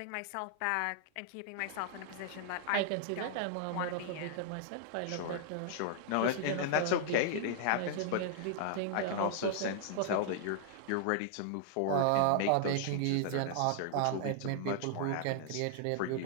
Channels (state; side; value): different; both; correlation -0.01